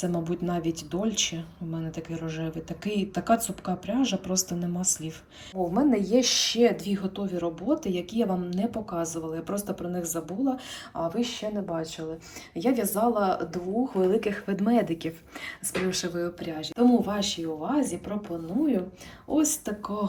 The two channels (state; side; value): identical; both; correlation 1.00